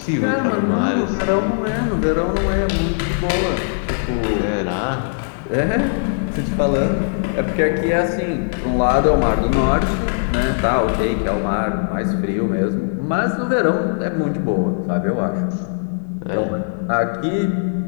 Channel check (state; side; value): silent; right; 66 dB below the other